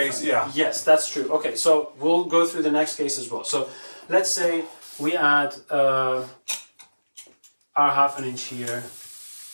different. yeah. Yes, that's true. Okay, so we'll go through the next case as well. So let's say we add our 1/2 inch here,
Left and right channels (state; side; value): inverted; both; correlation -1.00